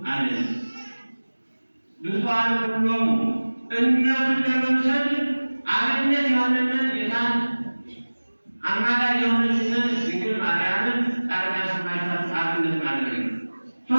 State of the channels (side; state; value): both; inverted; correlation -1.00